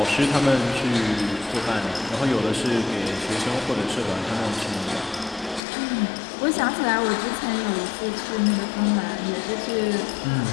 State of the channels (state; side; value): drops out; right; at 5.6 s